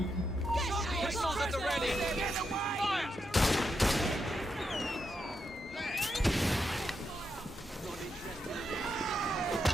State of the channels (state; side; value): normal; both; correlation 0.83